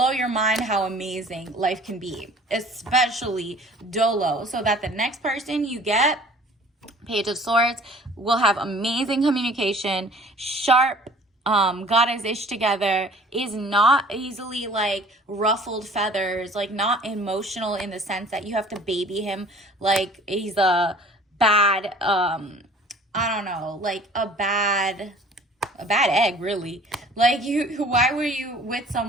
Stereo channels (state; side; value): normal; both; correlation 0.50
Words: your mind how amazing life can be, especially dolo, so that the next person you get, Page of Swords, will have amazing communication, sharp, got his ish together, is not easily like ruffled feathers, like not emotional in the sense that you have to baby him like he's a bad, I don't know, like a bad egg, really. Like why were you with